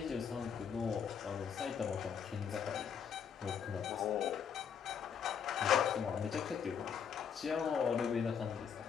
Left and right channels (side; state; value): right; quieter; 7.4 dB